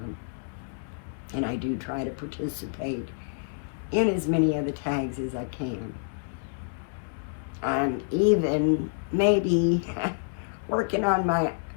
And I do try to participate in as many of the tags as I can. I'm even maybe working on my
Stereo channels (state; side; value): silent; right; 59 dB below the other